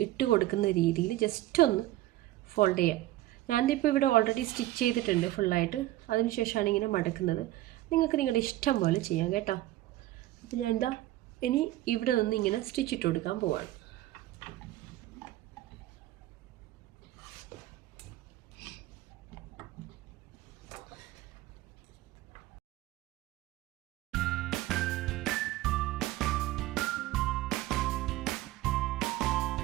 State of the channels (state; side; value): quieter; left; 15.9 dB